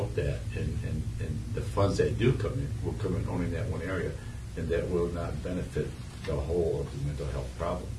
that, and the funds that do come in will come in only in that one area, and that will not benefit the whole of the mental health problem.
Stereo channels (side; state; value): both; identical; correlation 1.00